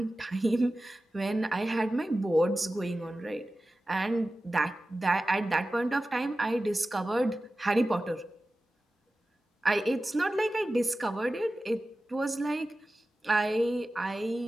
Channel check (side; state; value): both; normal; correlation 0.95